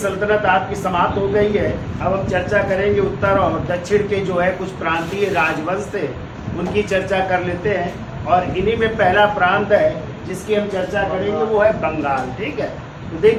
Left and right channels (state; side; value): identical; both; correlation 1.00